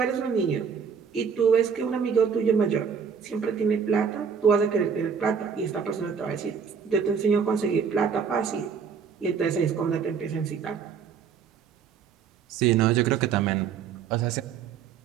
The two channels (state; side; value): quieter; left; 6.6 dB